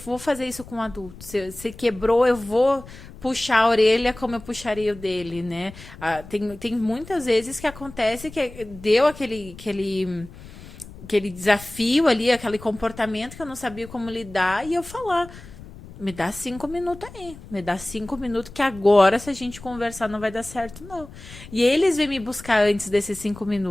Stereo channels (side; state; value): left; noise; rumble, 17 dB below the sound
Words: fazer isso com um adulto, se quebrou, eu vou puxar a orelha como eu puxaria o dele, né? Tem muitas vezes que acontece que deu aquele desafio ali, aquele comportamento que eu não sabia como lidar, e eu falar, me dá 5 minutos aí, me dá 5 minutos que agora, se a gente conversar, não vai dar certo, não. E eles vêm me buscar antes desses 5